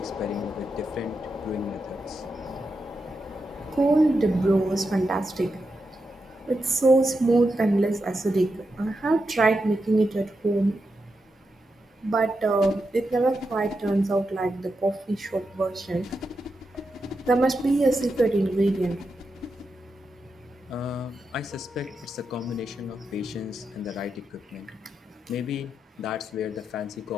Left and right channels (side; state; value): both; normal; correlation 0.86